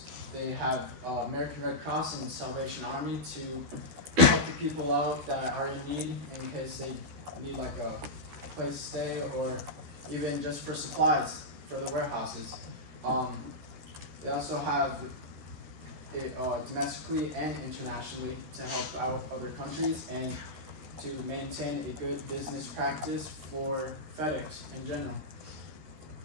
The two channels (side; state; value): left; late; 12 ms